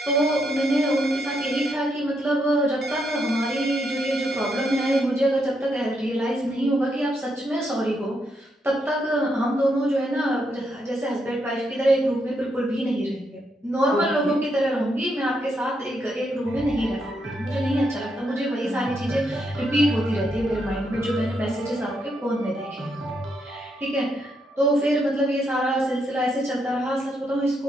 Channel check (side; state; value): both; normal; correlation 0.79